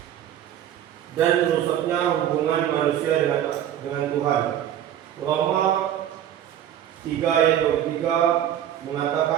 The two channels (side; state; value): left; quieter; 10.8 dB